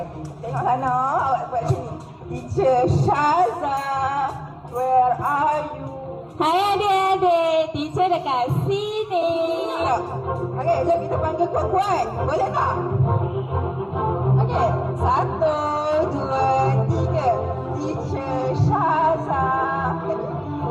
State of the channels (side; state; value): both; identical; correlation 1.00